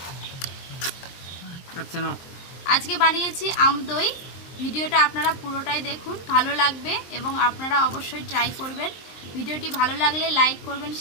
আচ্ছা না, আজকে বানিয়েছি আমদই। ভিডিওটা আপনারা পুরোটাই দেখুন, ভালো লাগবে এবং আপনারা অবশ্যই ট্রাই করবেন। ভিডিওটি ভালো লাগলে লাইক করবেন,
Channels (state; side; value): late; right; 23 ms